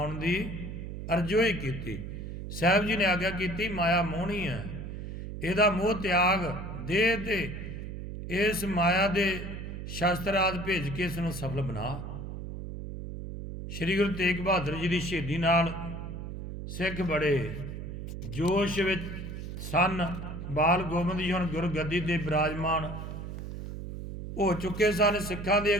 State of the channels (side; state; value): right; noise; hum, 8 dB below the sound